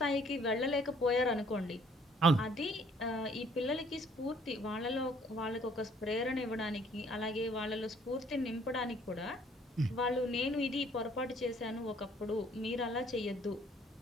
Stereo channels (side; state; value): both; normal; correlation 0.60